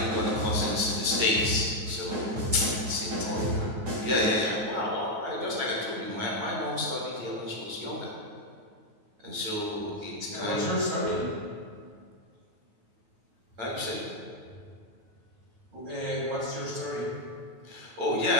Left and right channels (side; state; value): left; late; 9.3 ms